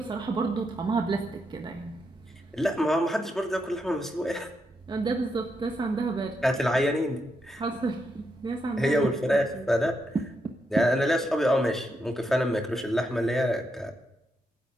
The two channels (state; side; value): normal; both; correlation 0.82